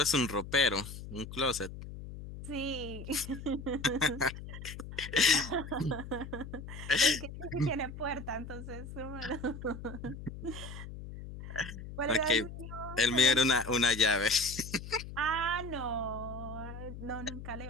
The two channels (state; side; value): noise; left; hum, 11 dB below the sound